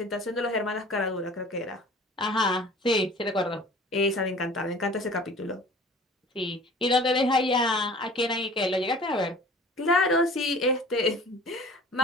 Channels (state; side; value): normal; both; correlation 0.45